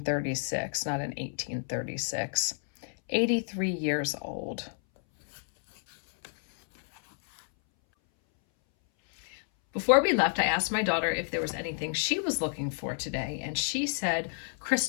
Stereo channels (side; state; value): right; silent; 58 dB below the other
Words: not an 1836. 83 years old. Before we left, I asked my daughter if there was anything she was looking for today, and she said